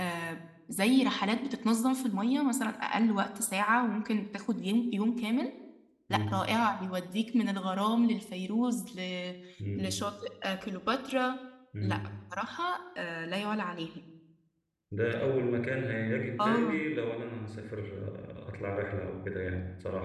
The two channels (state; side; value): identical; both; correlation 1.00